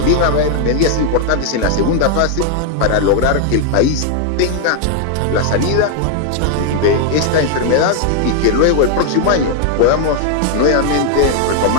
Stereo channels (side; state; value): both; different; correlation 0.00